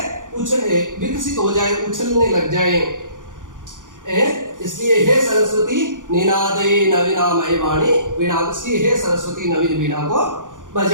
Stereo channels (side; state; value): left; late; 0.88 ms